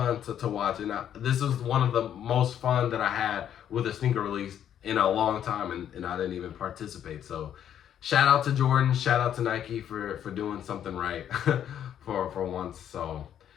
to watch. And this was one of the most fun that I had with a sneaker release in a long time, and I didn't even participate. So shout out to Jordan, shout out to Nike for doing something right for once. So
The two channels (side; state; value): right; quieter; 9.9 dB